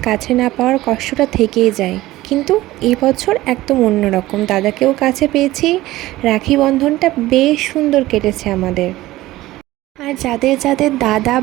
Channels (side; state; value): left; quieter; 17.1 dB